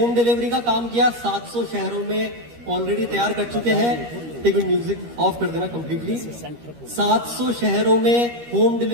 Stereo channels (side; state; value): left; late; 13 ms